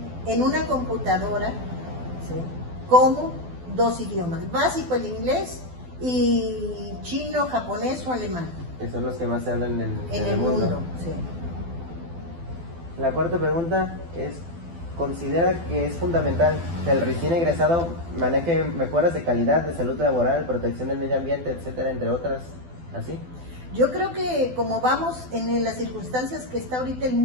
en una computadora, ¿sí? Como 2 idiomas, básico el inglés y chino, japonés o alemán. Que son los que más se hablan en el mundo. Sí. La cuarta pregunta es, considera que es fundamental que el recién egresado maneje mejoras de calidad, de salud laboral, protección del medio ambiente, etcétera, entre otras, así. Yo creo que como vamos en las circunstancias que está ahorita el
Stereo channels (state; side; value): late; left; 12 ms